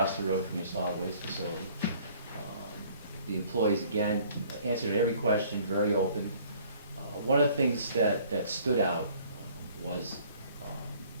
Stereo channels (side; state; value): both; inverted; correlation -0.56